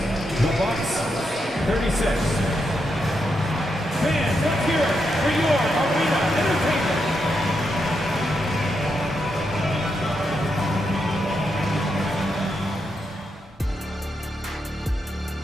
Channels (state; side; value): normal; both; correlation 0.83